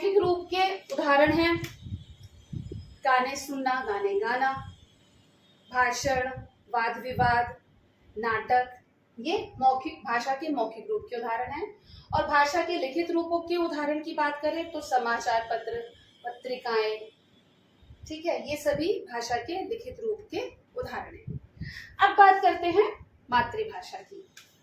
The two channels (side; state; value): both; identical; correlation 1.00